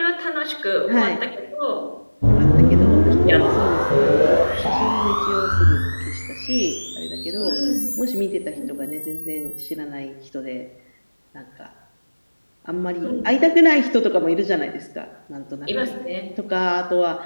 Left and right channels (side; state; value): both; inverted; correlation -1.00